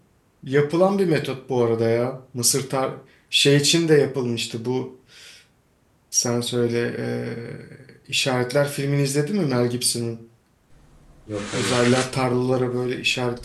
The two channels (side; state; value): both; identical; correlation 1.00